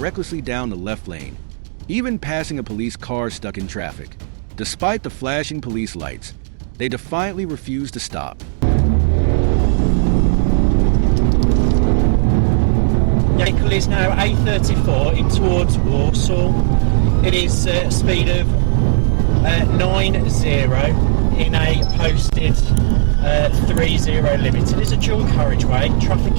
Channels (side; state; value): left; silent; digital silence